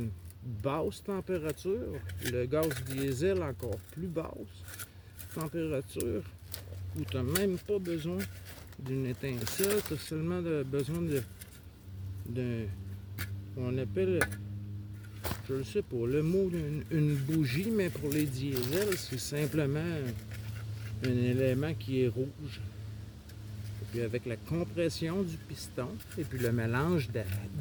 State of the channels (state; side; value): identical; both; correlation 1.00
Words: basse température. Le gaz diesel encore plus basse température, où tu n'as même pas besoin d'une étincelle, tu as seulement besoin on appelle, je ne sais pas le mot, une bougie, mais pour les diesels, c'est simplement un élément qui est rouge. Et puis avec la compression du piston, et puis le mélange